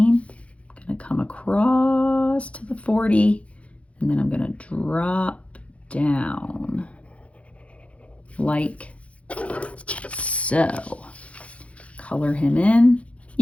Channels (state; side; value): late; right; 0.063 ms